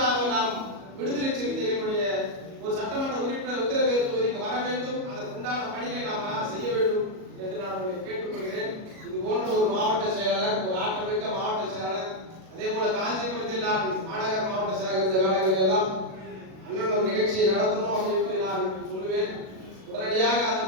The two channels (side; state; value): left; late; 37 ms